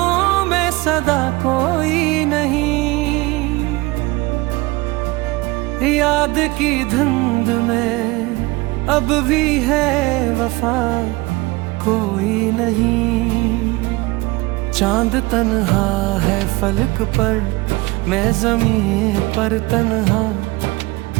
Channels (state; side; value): quieter; left; 22.3 dB